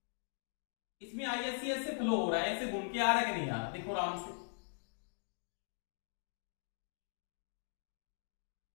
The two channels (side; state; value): right; silent; digital silence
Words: इसमें आईएससी ऐसे फ्लो हो रहा है, ऐसे घूम के आ रहा है कि नहीं आ रहा, देखो आराम से।